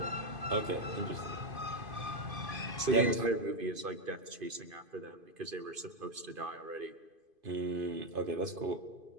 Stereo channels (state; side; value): late; left; 2.5 ms